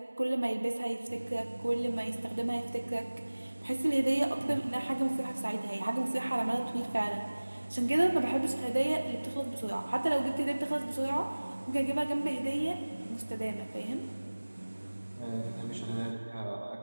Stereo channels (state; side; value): inverted; both; correlation -1.00